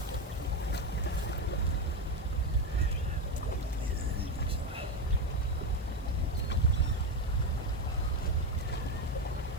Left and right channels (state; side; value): noise; left; hiss, 25 dB below the sound